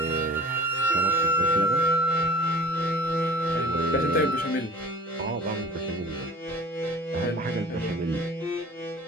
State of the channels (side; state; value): both; normal; correlation 0.44